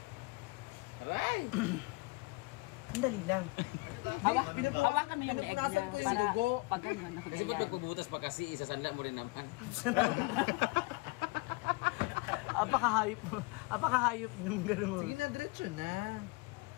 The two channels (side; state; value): right; quieter; 25.7 dB